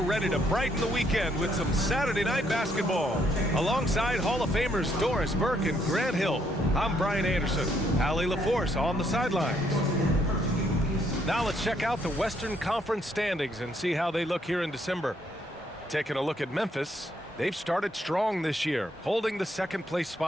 ready to brighten the weekend with some Saturday night basketball. Alongside Hall of Famers Doris Burke and Grant Hill, I'm Brian Anderson. Allie LaForce on the sidelines. Now let's check out the Western Conference standings and see how they look here in December. Taking a look at Memphis, they've started strong this year, holding the second-place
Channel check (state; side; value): normal; both; correlation 0.71